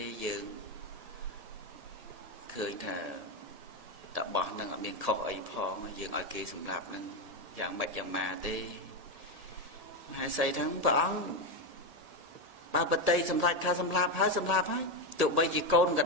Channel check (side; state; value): left; late; 1.8 ms